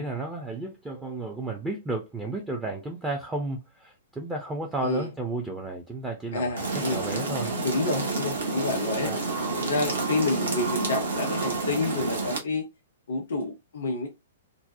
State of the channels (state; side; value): inverted; both; correlation -0.36